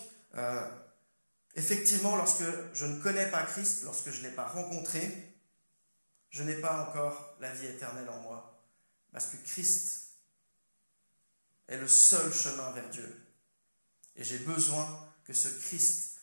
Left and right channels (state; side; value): inverted; both; correlation -1.00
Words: effectivement, lorsque je ne connais pas Christ, lorsque je ne l'ai pas rencontré, je n'ai pas encore la vie éternelle en moi. Parce que Christ est le seul chemin vers Dieu. Et j'ai besoin que ce Christ,